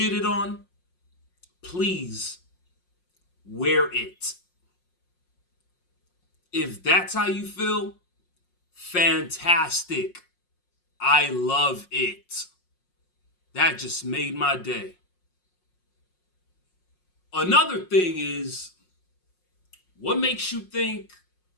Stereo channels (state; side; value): late; right; 5.5 ms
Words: on, please wear it. If that's how you feel, fantastic. I love it. That just made my day. Another thing is, what makes you think